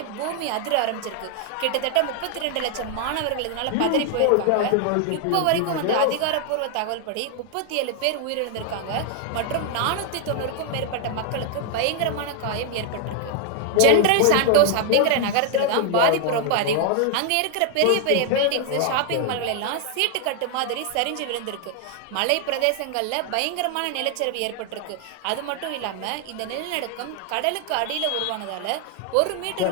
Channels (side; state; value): both; different; correlation 0.00